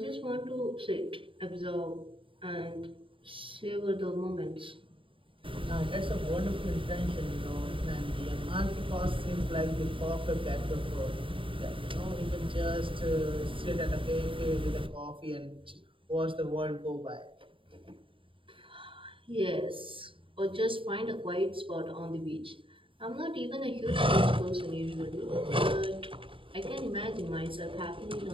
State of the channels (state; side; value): late; left; 0.25 ms